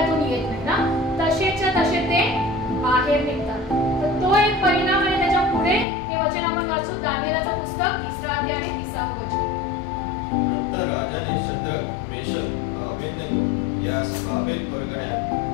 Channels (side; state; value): right; drops out; at 5.9 s